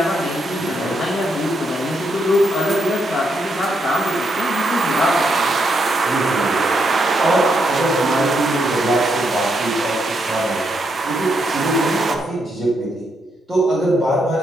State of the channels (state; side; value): normal; both; correlation 0.79